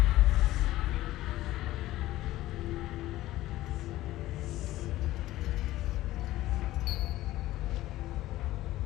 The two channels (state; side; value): quieter; right; 15.9 dB